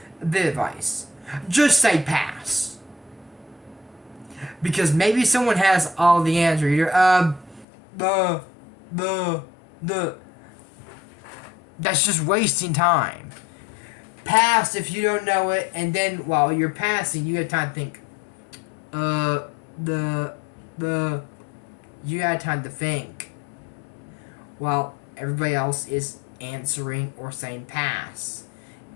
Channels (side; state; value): right; drops out; at 7.7 s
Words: a bit of advice. Just say pass. Because maybe someone has all the answer. You're, That's just wasting time. Pass if you don't know it, and then while you're passing, you have time to think. You got time to think. While everybody else is answering or saying pass.